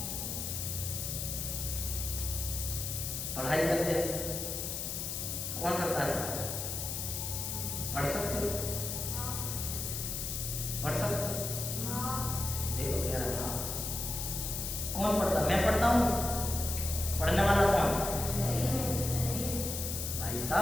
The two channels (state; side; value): noise; left; hiss, 3 dB below the sound